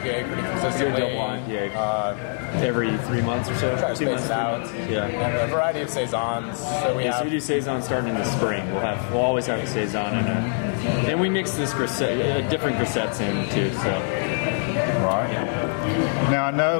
pretty consistently. Do a double IPA every 3 months or so. Try to 2 months, space it out. Yeah. And a variety of saisons. So we do saison starting in the spring. We'll always have a saison and we mix this different grisettes in too. So. Right. Yeah. Now I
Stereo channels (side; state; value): right; silent; digital silence